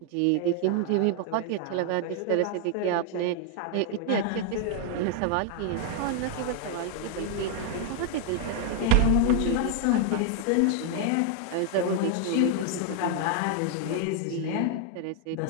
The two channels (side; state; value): both; different; correlation 0.00